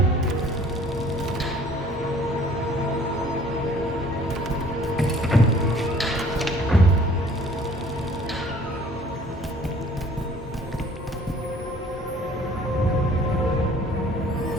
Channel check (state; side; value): normal; both; correlation 0.54